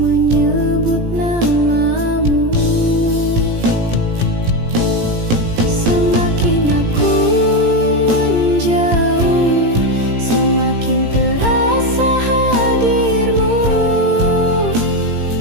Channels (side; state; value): left; late; 18 ms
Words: namamu. Semakin aku menjauh, semakin terasa hadirmu.